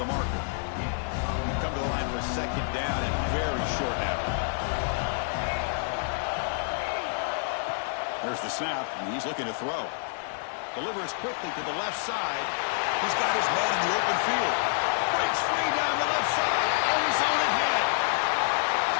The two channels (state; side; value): silent; right; digital silence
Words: marker. Come to the line for a second down and very short now. There's the snap, and he's looking to throw. Delivers quickly to the left side. He's got his man in the open field. Breaks free down the left side. End zone ahead.